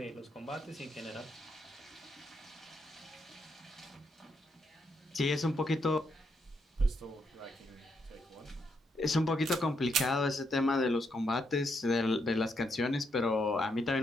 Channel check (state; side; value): normal; both; correlation 0.78